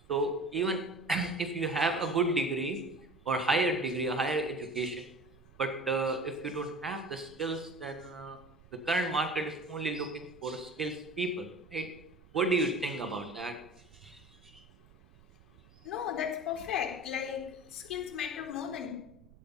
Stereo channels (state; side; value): noise; right; rumble, 25 dB below the sound